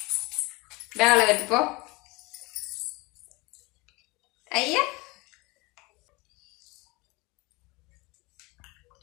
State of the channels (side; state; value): right; quieter; 24.6 dB